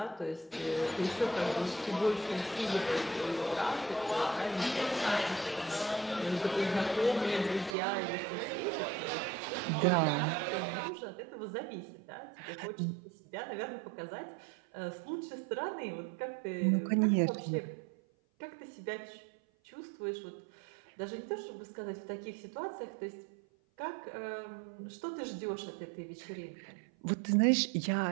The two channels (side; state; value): left; drops out; at 7.8 s